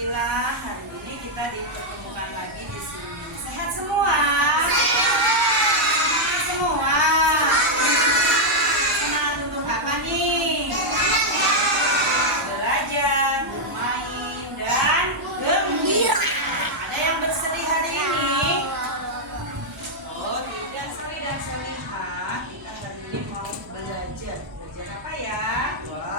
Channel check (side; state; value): left; noise; hum, 25 dB below the sound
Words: hari ini kita dipertemukan lagi di sini. Sehat semua? Sehat semua. Senang untuk apa nih? Belajar, bermain, dan gembira. Ada yang bersedih hari ini? Oh, tidak, Sali dan Salihah. Kita hari ini mau belajar. Belajar apa ya?